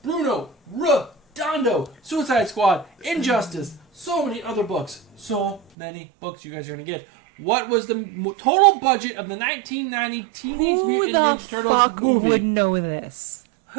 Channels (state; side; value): drops out; left; at 5.6 s